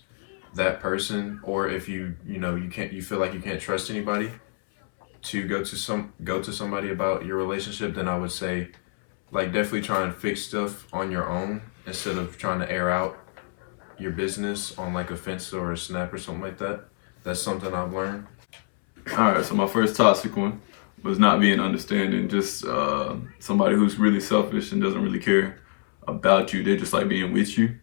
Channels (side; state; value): right; silent; 61 dB below the other